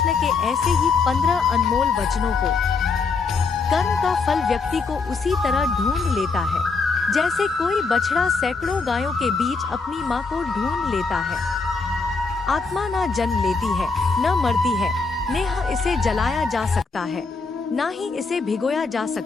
के ऐसे ही 15 अनमोल वचनों को। कर्म का फल व्यक्ति को उसी तरह ढूंढ लेता है जैसे कोई बछड़ा सैकड़ों गायों के बीच अपनी माँ को ढूंढ लेता है। आत्मा न जन्म लेती है, न मरती है, नेह इसे जलाया जा सकता है, ना ही इसे भिगोया जा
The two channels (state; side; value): quieter; right; 4.4 dB